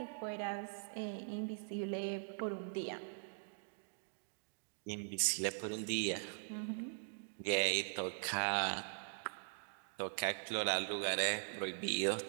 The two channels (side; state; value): left; silent; digital silence